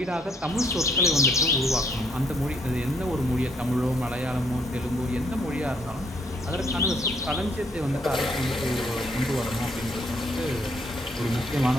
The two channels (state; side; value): normal; both; correlation 0.69